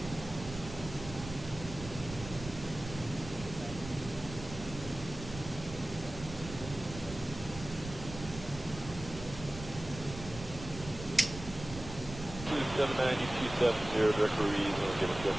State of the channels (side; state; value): right; noise; rumble, 11 dB below the sound